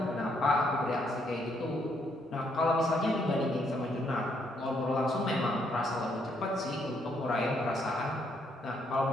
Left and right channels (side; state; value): both; normal; correlation 0.72